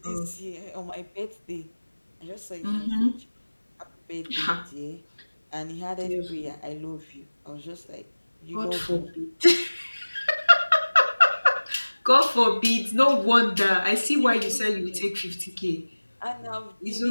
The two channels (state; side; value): inverted; both; correlation -1.00